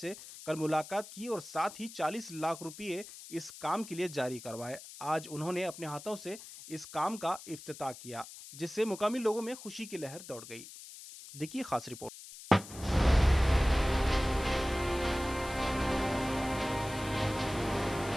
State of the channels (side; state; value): left; noise; hiss, 15 dB below the sound